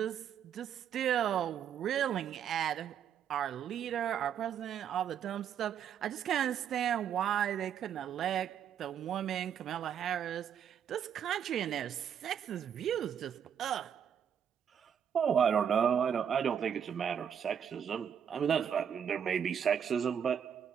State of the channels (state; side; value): quieter; left; 8.5 dB